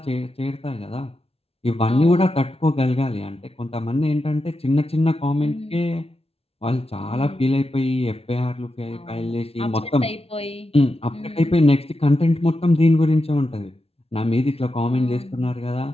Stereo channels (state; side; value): late; right; 0.29 ms